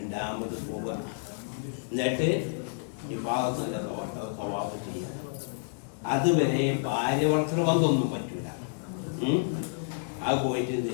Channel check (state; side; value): silent; right; digital silence